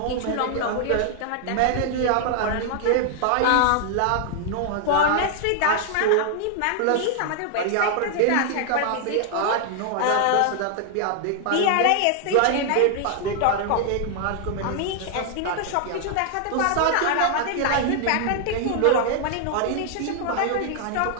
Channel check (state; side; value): different; both; correlation 0.00